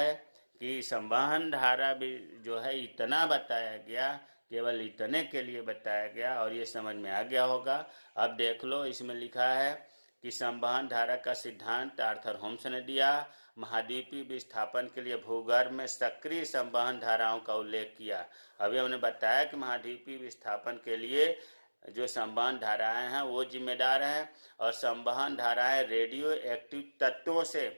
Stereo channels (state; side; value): inverted; both; correlation -1.00